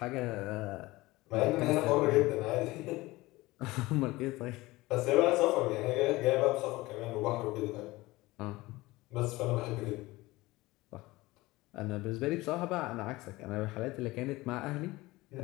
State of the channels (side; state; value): right; quieter; 20.1 dB